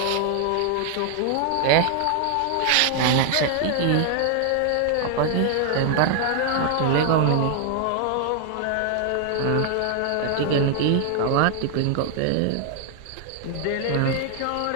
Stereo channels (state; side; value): different; both; correlation 0.00